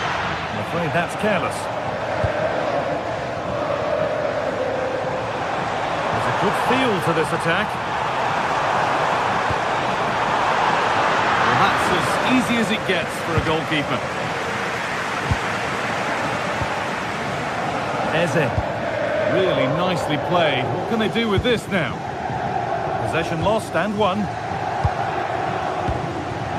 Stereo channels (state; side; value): identical; both; correlation 1.00